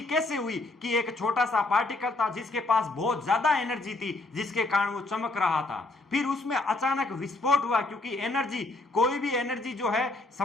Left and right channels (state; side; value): quieter; right; 3.0 dB